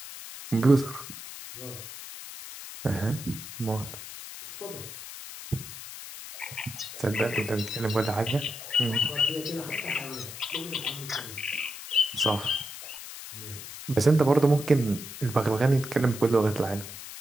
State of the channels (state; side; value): noise; left; hiss, 12 dB below the sound